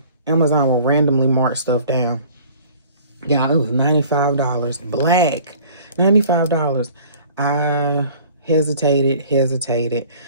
Amazon will randomly mark stuff down. Yeah, it was $95. Black. $95. I hesitated,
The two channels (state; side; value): inverted; both; correlation -0.49